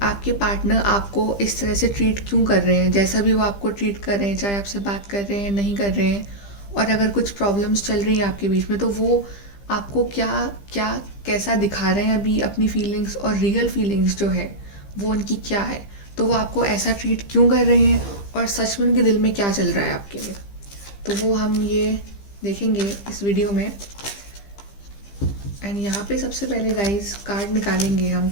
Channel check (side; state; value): right; late; 15 ms